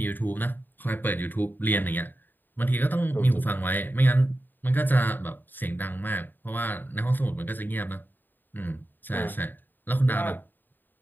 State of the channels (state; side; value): late; right; 0.091 ms